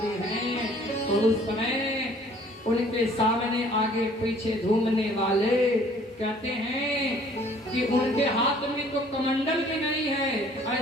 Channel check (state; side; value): normal; both; correlation 0.56